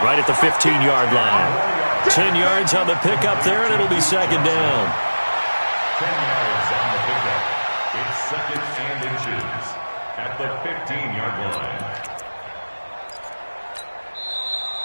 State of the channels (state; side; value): inverted; both; correlation -1.00